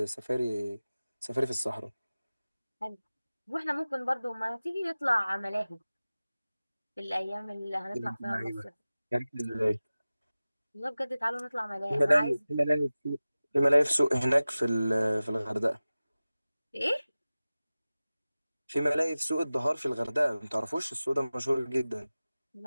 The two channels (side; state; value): both; inverted; correlation -0.97